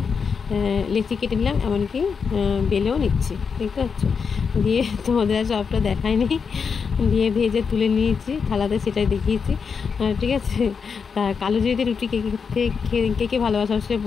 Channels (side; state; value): right; quieter; 5.9 dB